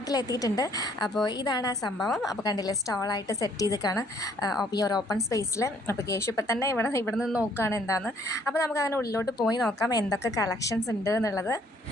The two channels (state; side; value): normal; both; correlation 0.63